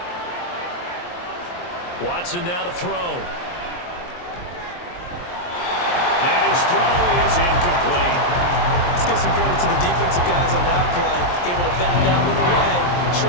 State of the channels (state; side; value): late; right; 23 ms